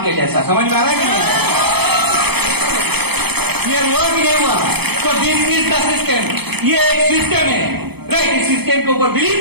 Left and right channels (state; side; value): late; left; 0.98 ms